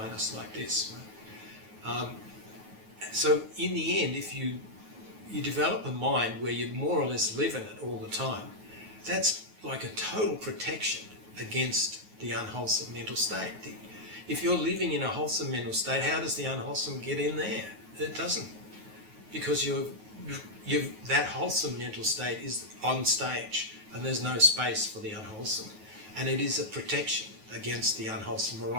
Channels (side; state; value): left; late; 9.4 ms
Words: like this. Right? So in the end, if you develop a mind where you more or less live in it all the time, that's like a total protection against the unwholesome mental state. If you're living in a wholesome mental state, how does the unwholesome get in there? It doesn't, because that wholesome mental state is on stage and there's no space for the unwholesome, and it is a protection against the unwholesome